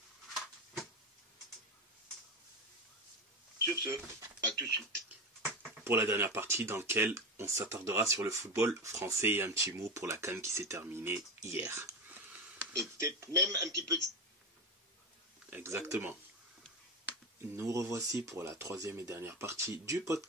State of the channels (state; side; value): normal; both; correlation 0.17